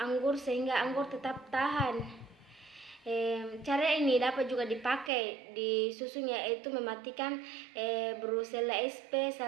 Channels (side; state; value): left; drops out; at 5.1 s